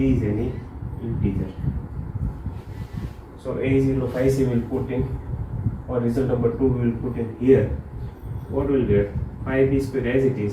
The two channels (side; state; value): both; identical; correlation 1.00